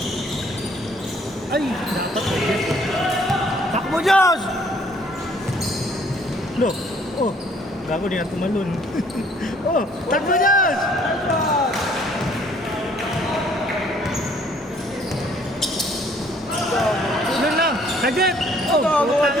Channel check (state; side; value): normal; both; correlation 0.61